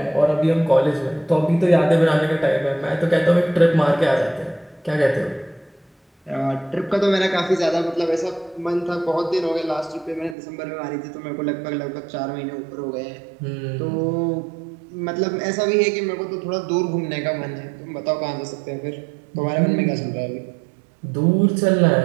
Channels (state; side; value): drops out; left; at 10.4 s